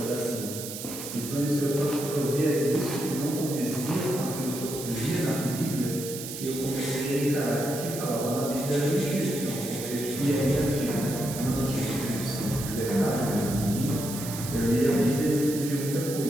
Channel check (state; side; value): noise; right; hiss, 9 dB below the sound